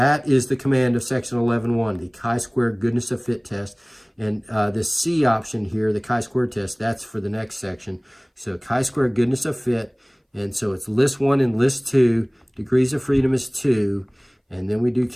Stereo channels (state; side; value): identical; both; correlation 1.00